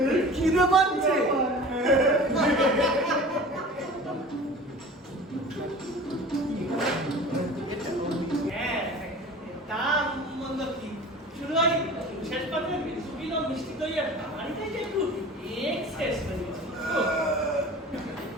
খিদে পাচ্ছে শেষ পর্যন্ত মিষ্টি দই আর বাড়িতে একটু এক্সেস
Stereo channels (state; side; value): normal; both; correlation 0.40